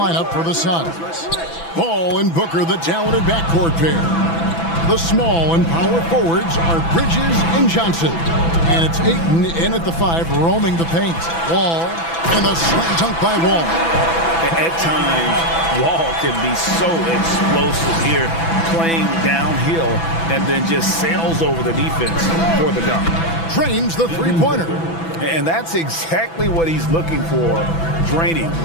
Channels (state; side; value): late; right; 6.0 ms